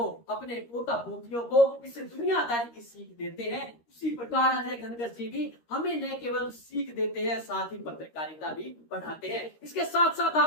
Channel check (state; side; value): late; right; 13 ms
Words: अपने पोता पोतियों को इस दुनियादारी की सीख देते हैं, उसी प्रकार अजय घनघस जी भी हमें न केवल सीख देते हैं, साथ ही पत्रकारिता भी पढ़ाते हैं। इसके साथ साथ